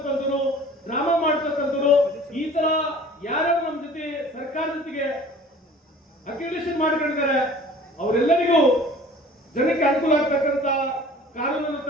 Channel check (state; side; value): normal; both; correlation 0.47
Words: ಡ್ರಾಮಾ ಮಾಡ್ತಕ್ಕಂಥವ್ರು, ಈ ತರ ಯಾರ್ಯಾರು ನಮ್ಮ ಜೊತೆ ಸರ್ಕಾರದ ಜೊತೆಗೆ ಅಕ್ರಿಡಿಷನ್ ಮಾಡ್ಕೊಂಡಿದ್ದಾರೆ ಅವರೆಲ್ಲರಿಗೂ ಜನಕ್ಕೆ ಅನುಕೂಲ ಆಗ್ತಕ್ಕಂಥ ಕಾನೂನನ್ನು